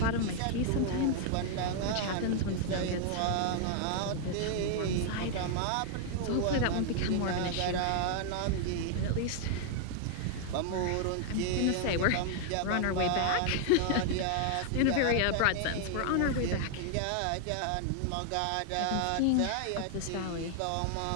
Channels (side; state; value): both; different; correlation 0.00